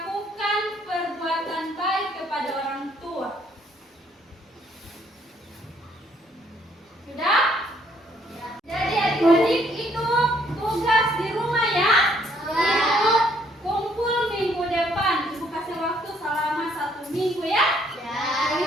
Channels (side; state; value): both; normal; correlation 0.66